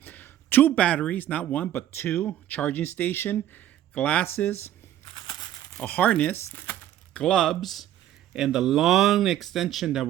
2 batteries, not 1, but 2, charging station, glasses, a harness, gloves, and the long extension that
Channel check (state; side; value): quieter; left; 12.2 dB